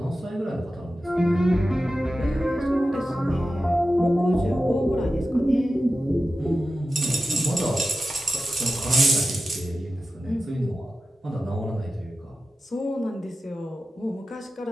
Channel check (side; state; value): both; normal; correlation 0.93